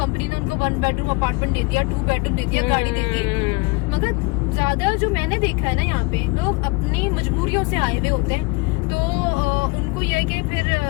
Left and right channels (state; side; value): quieter; right; 26.7 dB